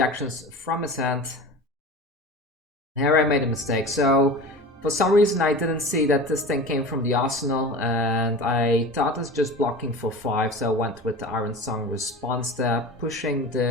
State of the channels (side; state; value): both; normal; correlation 0.34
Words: from his hand. Here I made a mistake. So for some reason I didn't see that this thing came from the arsenal, and I thought it's just blocking for 5, so I went with the Iron Song response there, pushing